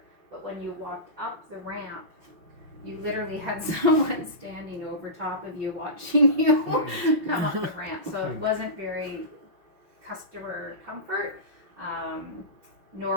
But when you walked up the ramp, you literally had someone standing over top of you watching you come up the ramp. So it wasn't very customer comfort,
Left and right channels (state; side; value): late; left; 5.7 ms